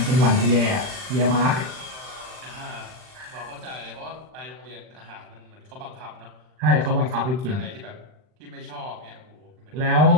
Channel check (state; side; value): late; left; 39 ms